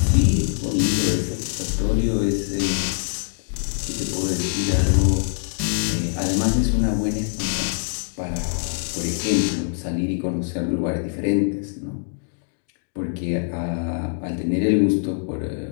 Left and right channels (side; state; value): right; silent; digital silence